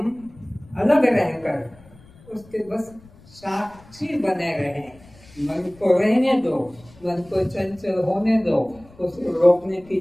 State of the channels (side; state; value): left; noise; rumble, 25 dB below the sound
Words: अलग रहकर उसके बस साक्षी बने रहें। मन को रहने दो, मन को चंचल होने दो, उसको रोकने की